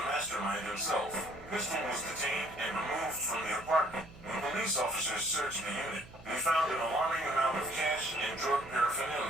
mastermind himself. Pistol was detained and removed from the apartment. When police officers searched the unit, they found an alarming amount of cash and drug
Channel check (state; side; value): noise; right; hum, 20 dB below the sound